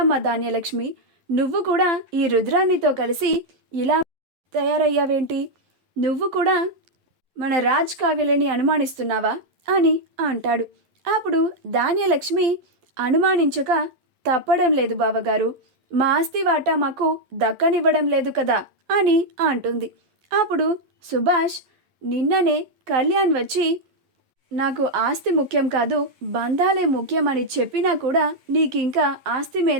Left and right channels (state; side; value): late; left; 11 ms